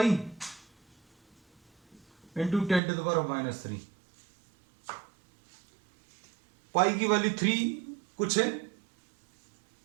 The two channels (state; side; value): drops out; left; at 2.8 s